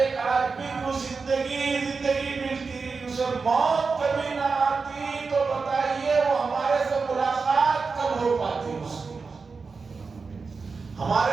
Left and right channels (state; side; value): quieter; left; 4.7 dB